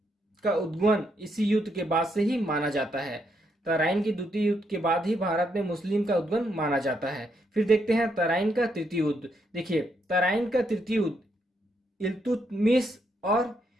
का उद्गमन इसी युद्ध के बाद से ही माना जाता है। तराइन के द्वितीय युद्ध के बाद ही भारत में मुस्लिम का उद्गमन माना जाता है। फिर देखते हैं तराइन का तृतीय युद्ध। देखिए, तराइन का तृतीय युद्ध इल्तुतमिश और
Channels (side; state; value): both; normal; correlation 0.77